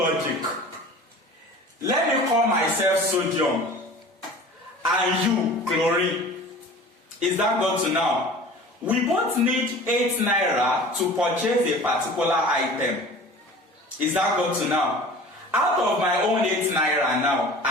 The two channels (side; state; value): both; normal; correlation 0.41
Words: Let me call myself sodium and you chlorine. Is that got to now? We both need 8 naira to purchase a particular item. Is that got to now? Out of my own 8 naira now, I